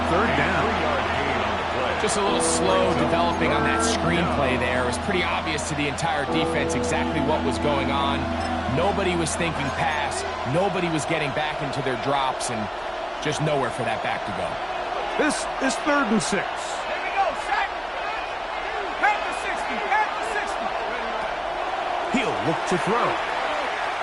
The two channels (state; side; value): identical; both; correlation 1.00